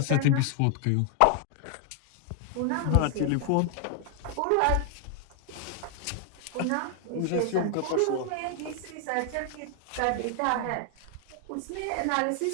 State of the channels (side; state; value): both; different; correlation 0.00